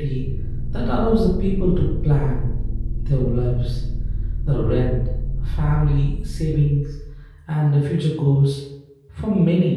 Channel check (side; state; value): both; identical; correlation 1.00